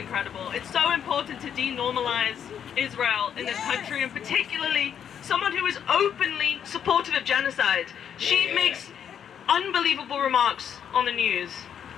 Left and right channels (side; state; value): right; quieter; 8.6 dB